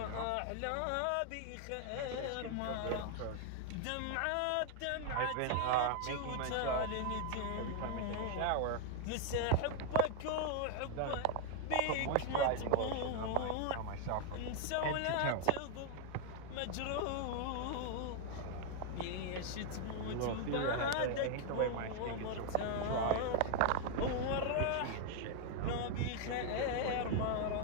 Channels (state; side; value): different; both; correlation 0.00